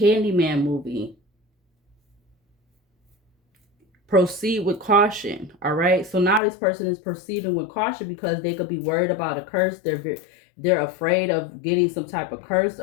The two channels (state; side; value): drops out; right; at 6.4 s